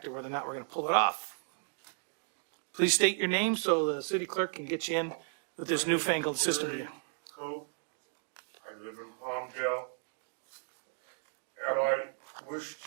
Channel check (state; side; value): silent; left; digital silence